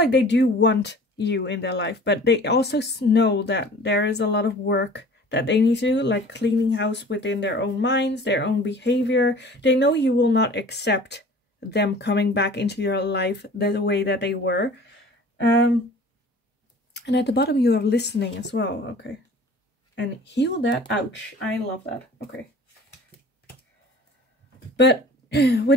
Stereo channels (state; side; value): normal; both; correlation 0.46